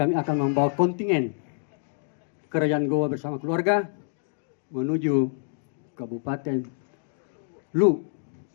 akan membawa kontingen Kerajaan Goa bersama keluarga menuju Kabupaten Lu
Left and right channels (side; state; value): right; silent; 60 dB below the other